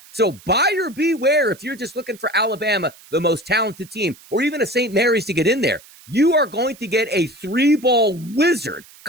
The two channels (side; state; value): right; noise; hiss, 23 dB below the sound